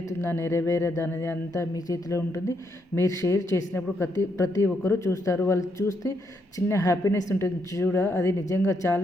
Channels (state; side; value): normal; both; correlation 0.77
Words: నెరవేరదా అనేది అంతా మీ చేతిలో ఉంటుంది. మీరు షేర్ చేసినప్పుడు ప్రతి ఒక్కరూ చూస్తారు. వాళ్ళు చూస్తే చిన్న హ్యాపీనెస్ ఉంటుంది చూడ, అది నిజంగా